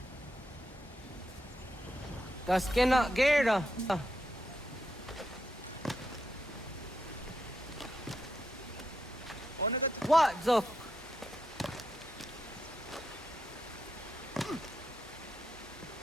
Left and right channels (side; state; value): both; normal; correlation 0.83